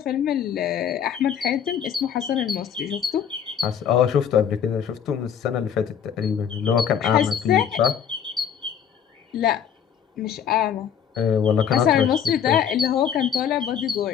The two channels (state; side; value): quieter; right; 8.3 dB